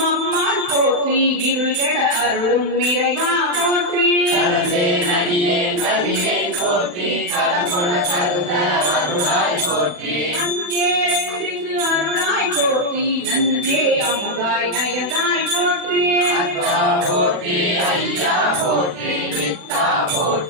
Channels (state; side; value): late; left; 40 ms